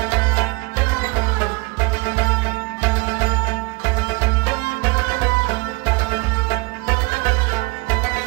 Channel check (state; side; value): quieter; left; 27.4 dB